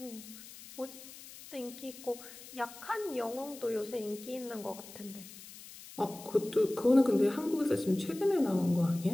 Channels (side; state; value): left; noise; hiss, 16 dB below the sound